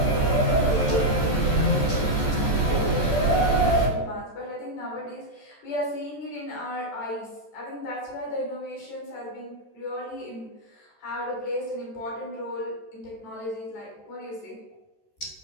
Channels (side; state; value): right; late; 14 ms